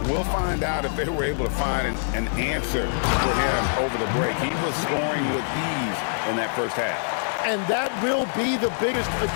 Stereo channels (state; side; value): silent; right; 55 dB below the other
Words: we'll find out if they were able to find an answer for him over the break. He was scoring with ease in that first half. And that will be the biggest